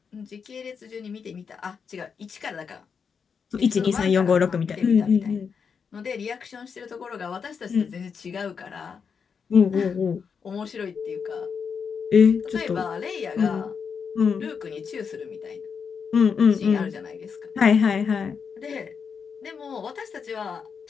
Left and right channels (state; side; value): quieter; right; 6.2 dB